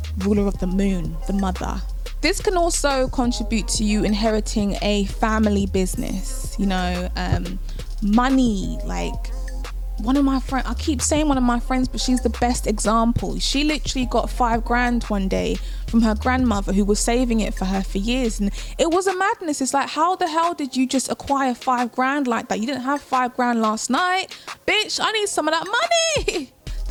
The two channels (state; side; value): identical; both; correlation 1.00